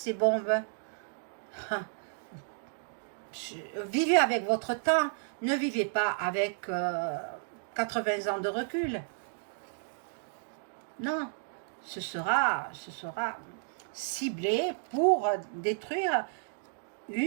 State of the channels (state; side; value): silent; left; digital silence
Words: bombes. Vivez avec votre temps. Ne vivez pas avec 80 ans de recul. Non, ce sera ciblé pour détruire